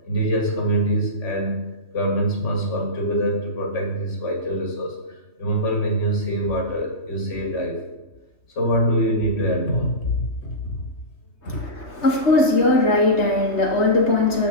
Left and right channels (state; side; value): late; right; 3.3 ms